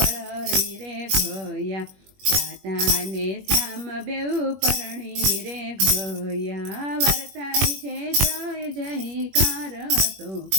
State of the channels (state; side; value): late; left; 21 ms